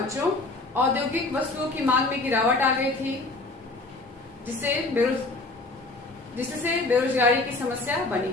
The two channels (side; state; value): right; quieter; 3.2 dB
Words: औद्योगिक वस्तुओं की मांग में गिरावट आ गई थी, जिससे बेरोजगारी की समस्या बनी